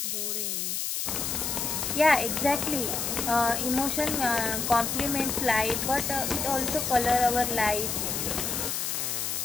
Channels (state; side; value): noise; left; hiss, 1 dB below the sound